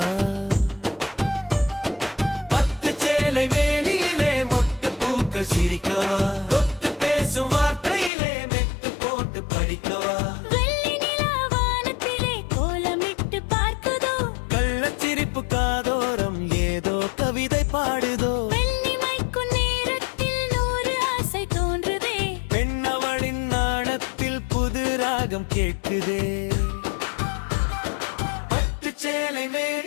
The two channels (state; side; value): drops out; right; at 8.1 s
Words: பத்து சேலை வேலியிலே மொட்டு பூக்கள் சிரிக்கவா தொட்டு பேசும் வார்த்தையிலே மெட்டு போட்டு படிக்கவா கள்ளச்சிரிப்பு காதோரம் ஏதோ கவிதை பாடுதோ பெண்ணவளின் நாணத்தில் புது ராகம் கேட்குதே பட்டு சேலை